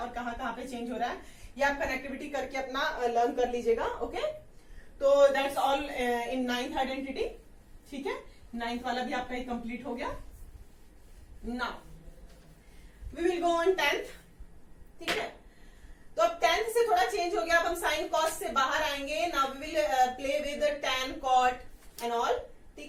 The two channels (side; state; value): both; identical; correlation 1.00